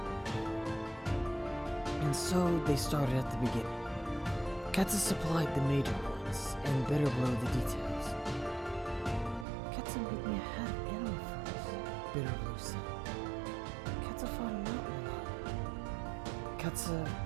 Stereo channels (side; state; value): left; drops out; at 9.5 s